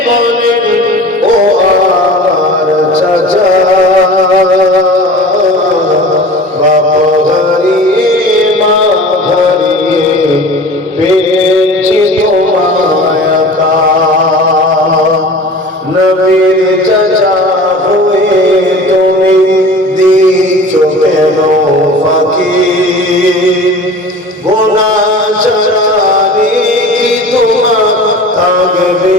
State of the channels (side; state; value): both; normal; correlation 0.39